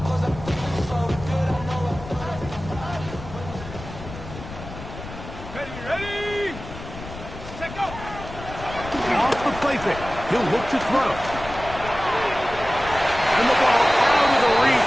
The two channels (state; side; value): noise; left; rumble, 12 dB below the sound